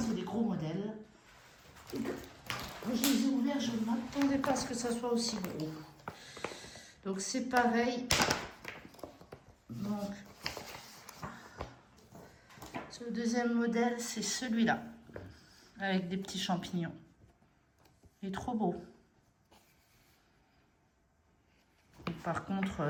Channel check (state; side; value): identical; both; correlation 1.00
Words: des gros modèles. Je les ai ouverts, je ne m'attendais pas à ce que ça soit aussi gros. Donc c'est pareil. Donc, le deuxième modèle, c'est celui-là. Avec des petits champignons. Il est trop beau. Et par contre,